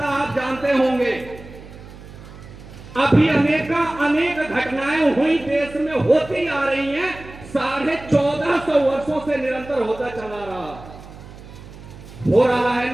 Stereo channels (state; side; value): noise; right; hum, 17 dB below the sound